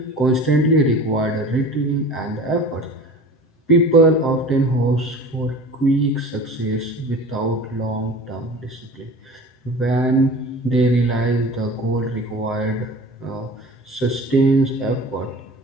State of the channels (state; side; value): late; right; 7.7 ms